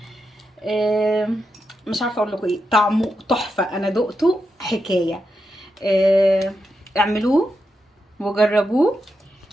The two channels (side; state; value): both; normal; correlation 0.86